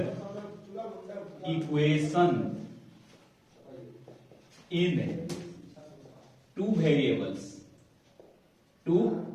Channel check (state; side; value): identical; both; correlation 1.00